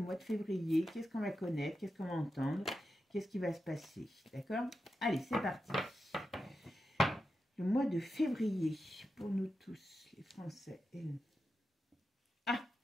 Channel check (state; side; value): normal; both; correlation 0.89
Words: de février? Qu'est-ce qu'on va connaître? Qu'est-ce qu'on va entendre? Qu'est-ce qui va se passer? D'accord? Allez, c'est parti. Le mois de février, pour nous tous, les Français et nous. Ah,